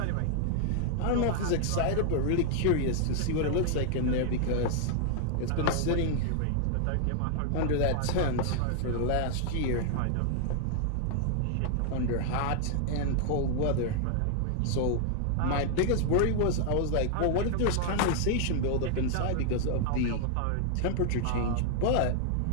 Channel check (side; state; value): both; different; correlation 0.00